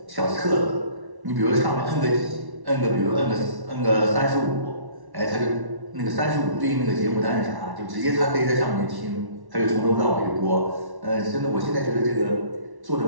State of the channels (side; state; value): left; late; 1.1 ms